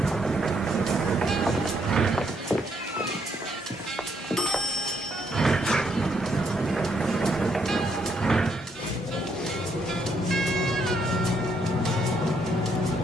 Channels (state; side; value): normal; both; correlation 0.73